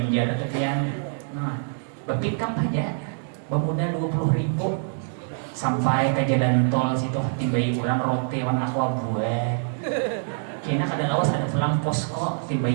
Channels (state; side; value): silent; left; 62 dB below the other